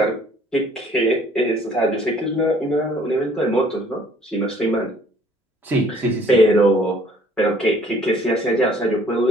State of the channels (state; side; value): normal; both; correlation 0.58